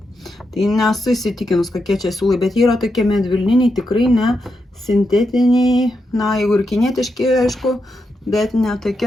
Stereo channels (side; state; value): both; normal; correlation 0.85